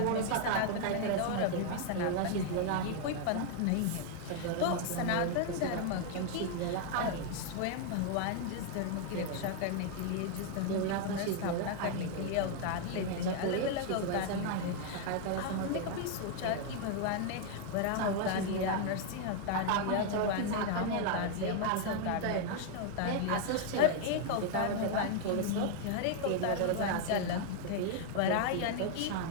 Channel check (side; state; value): both; different; correlation 0.00